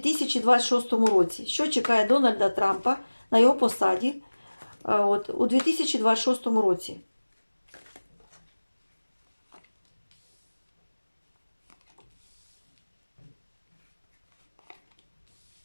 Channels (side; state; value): both; inverted; correlation -1.00